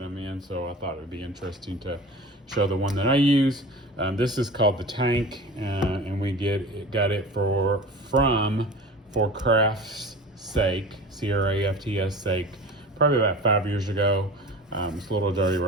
I'm in, so I thought it would be interesting to show the one that I use. This is called the Tank, and we got it from For Craft's Sake, C-R-A-F-T-S sake, probably about 5 years ago. It's a little dirty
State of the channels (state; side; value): normal; both; correlation 0.36